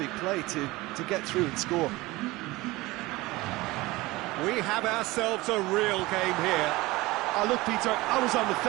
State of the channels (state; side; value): quieter; left; 20.6 dB